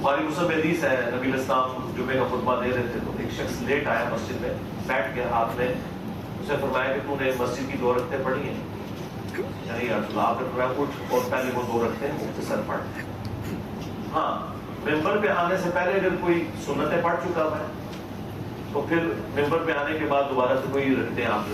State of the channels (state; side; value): identical; both; correlation 1.00